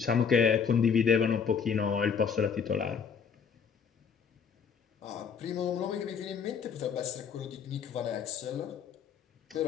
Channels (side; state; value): right; quieter; 6.7 dB